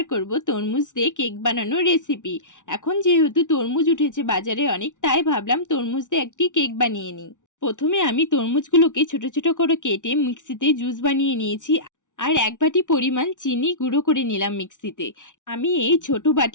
করব তরমুজ দিয়ে কেক বানানোর রেসিপি। এখন যেহেতু তরমুজ উঠেছে বাজারে অনেক, তাই ভাবলাম তরমুজ দিয়ে একটি কেক বানিয়ে নিই। প্রথমে আমি তরমুজগুলোকে ছোট ছোট করে কেটে মিক্সিতে জুস বানিয়ে নিয়েছি। আর এক বাটি পরিমাণ চিনি গুঁড়ো করে নিলাম মিক্সিতে। আমি এই ছোট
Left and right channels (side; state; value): right; late; 0.87 ms